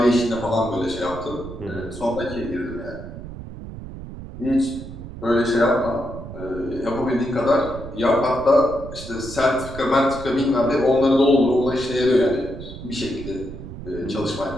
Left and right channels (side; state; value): right; noise; rumble, 12 dB below the sound